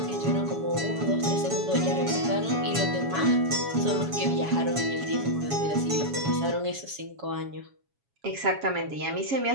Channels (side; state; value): left; late; 7.2 ms